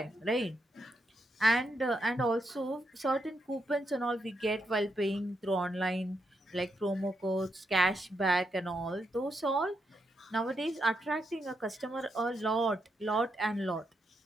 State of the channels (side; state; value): both; normal; correlation 0.82